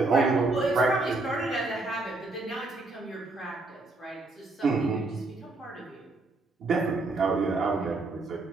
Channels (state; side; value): quieter; left; 3.2 dB